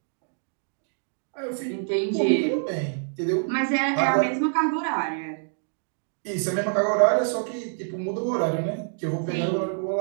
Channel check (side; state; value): left; silent; digital silence